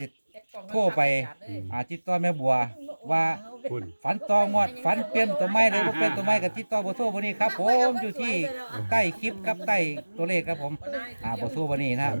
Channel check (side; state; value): both; inverted; correlation -1.00